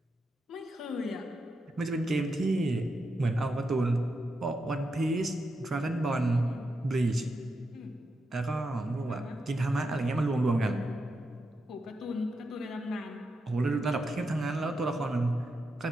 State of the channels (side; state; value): both; normal; correlation 0.85